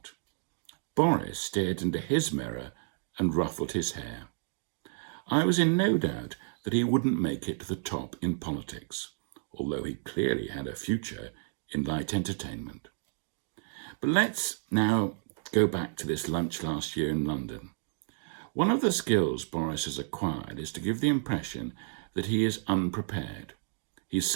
Boris stared into his mirror and ruffled his hair. I was in no doubt that he wouldn't make it to the top in politics, although he clearly had a future in light entertainment. But let's now go back to this lunch last year in London. One of the skills Boris has acquired is to give the impression that he is unprepared. He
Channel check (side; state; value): left; silent; digital silence